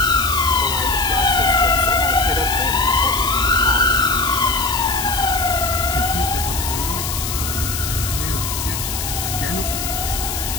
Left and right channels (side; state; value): left; noise; hiss, 4 dB below the sound